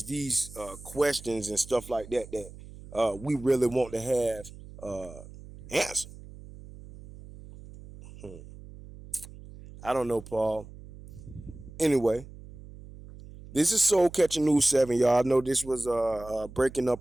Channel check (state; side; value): noise; right; hum, 17 dB below the sound